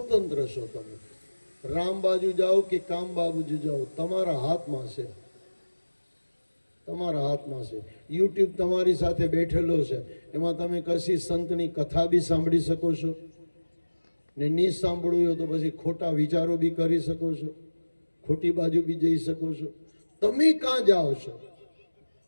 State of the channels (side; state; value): both; inverted; correlation -1.00